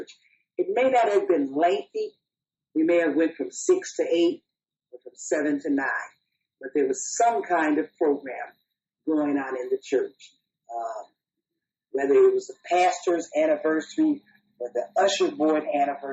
It may not have been lengthy. We may have went from 6 to 8 or from 7 to 9. But there was some kind of program going on in the church. Whether it was the pastor's anniversary or the usher board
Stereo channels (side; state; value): both; identical; correlation 1.00